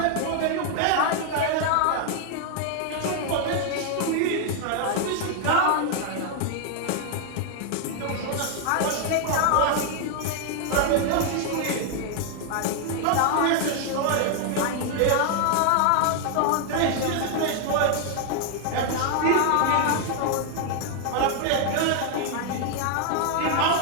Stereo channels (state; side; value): different; both; correlation 0.00